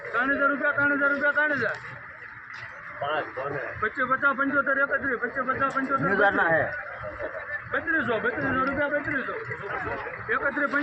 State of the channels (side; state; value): both; identical; correlation 1.00